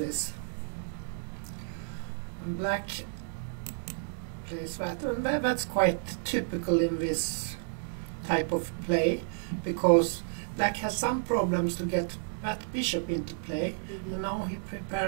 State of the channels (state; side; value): silent; left; digital silence